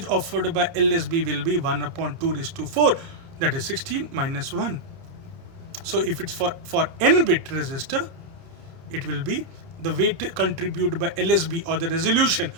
offered by LSB will be 1 upon 2 raised to 4, that is 16 minus 1. So if it's for n-bit resistor, it will be the weight contributed by LSB, or the resolution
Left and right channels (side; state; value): left; late; 30 ms